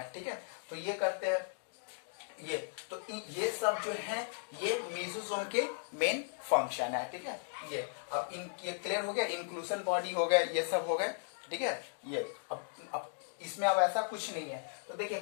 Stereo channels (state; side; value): silent; right; digital silence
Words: ठीक है। तो ये करते हैं ये, तो ये सब जो है ये मेसोसोम के मेन फंक्शन है, ठीक है। ये अब ये क्लियर हो गया, इंक्लूजन बॉडी हो गया, ये सब हो गए, ठीक है। ये अब इसमें अब ऐसा कुछ नहीं है। तो देखिए